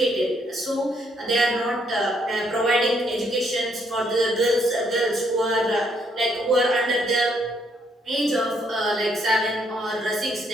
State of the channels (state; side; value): normal; both; correlation 0.71